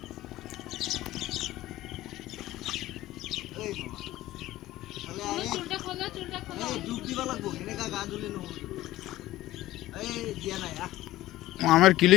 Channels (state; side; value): quieter; right; 15.8 dB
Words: কোন চুলটা খোলো ডুব দিবা লাগবো এনেকা গা ধুলে নহব এই দিয়া নাই আমার